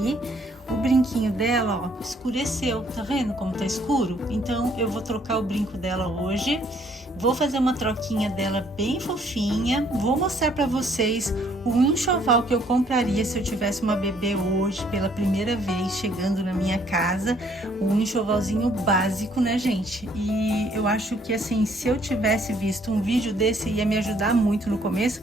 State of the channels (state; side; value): normal; both; correlation 0.64